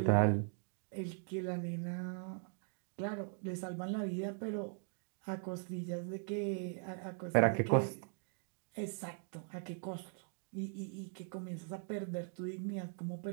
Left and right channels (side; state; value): left; silent; 51 dB below the other